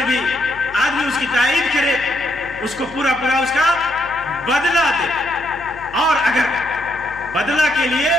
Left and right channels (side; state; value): left; noise; hum, 20 dB below the sound